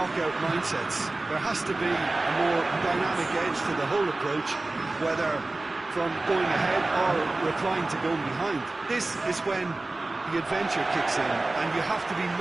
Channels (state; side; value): quieter; left; 3.0 dB